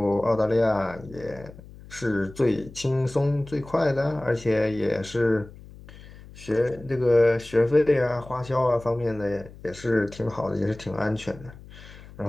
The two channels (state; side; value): noise; left; hum, 19 dB below the sound